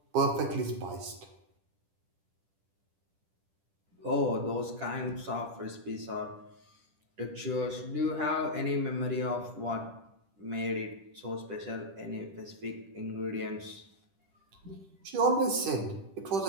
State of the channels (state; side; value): late; left; 10 ms